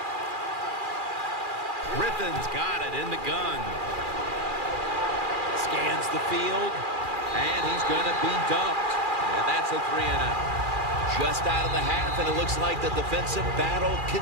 Griffin's got it in the gun. Scans the field. And he's going to be dumped. And that's a 3-and-out. Just out of the half, and it looks like the defensive battle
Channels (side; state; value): left; late; 2.4 ms